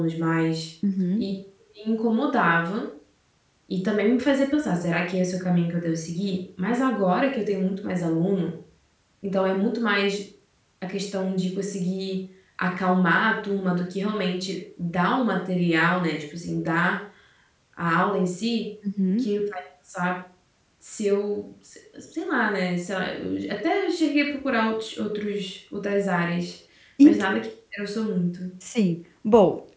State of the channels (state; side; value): identical; both; correlation 1.00